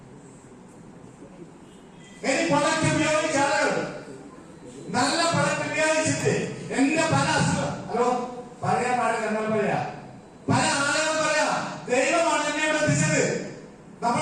ഇനി പ്രൊഡക്റ്റ് ഉപയോഗിച്ച ആളുകൾ നല്ല പ്രൊഡക്റ്റ് ഉപയോഗിച്ചിട്ട് എന്റെ പല ഹലോ പറയാൻ പാടില്ല, എന്നാൽ പറയാ പല ആളുകളും പറയാ ദൈവമാണ് എന്നെ ഇവിടെ എത്തിച്ചത്.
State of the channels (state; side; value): identical; both; correlation 1.00